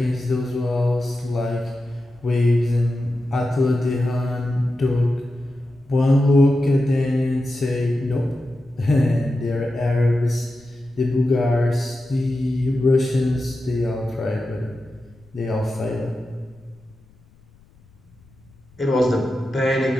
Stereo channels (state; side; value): noise; left; rumble, 29 dB below the sound